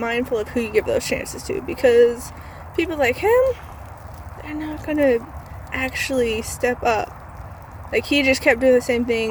of who you give those chances to, because people like him, they're not gonna actually step up. Like, he just kept doing the same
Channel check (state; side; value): identical; both; correlation 1.00